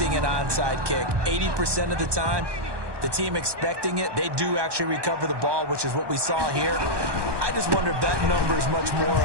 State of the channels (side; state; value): left; late; 1.2 ms